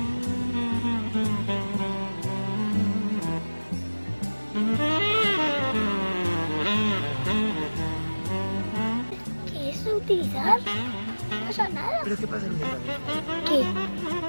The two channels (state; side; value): inverted; both; correlation -1.00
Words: ¿Qué es utilizar? No pasa nada. ¿Pero qué pasa en el ¿Qué?